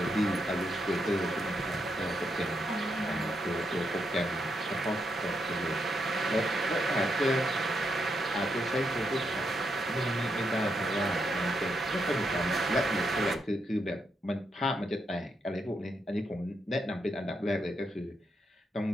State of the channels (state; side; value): normal; both; correlation 0.80